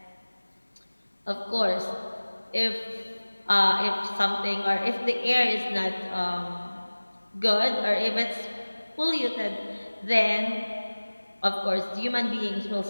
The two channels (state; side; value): inverted; both; correlation -1.00